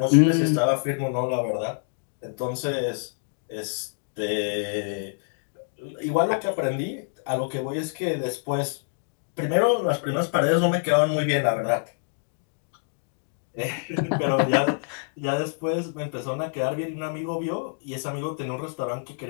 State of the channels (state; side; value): silent; right; digital silence